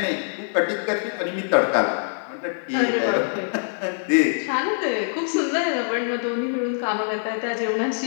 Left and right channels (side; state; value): right; silent; digital silence